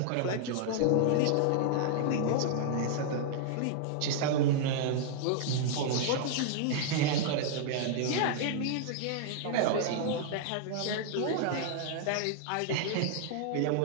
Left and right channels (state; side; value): different; both; correlation -0.01